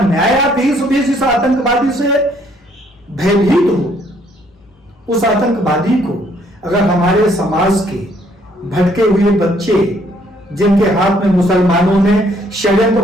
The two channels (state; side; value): normal; both; correlation 0.66